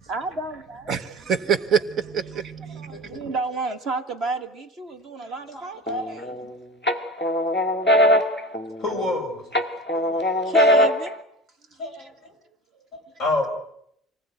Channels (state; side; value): normal; both; correlation 0.32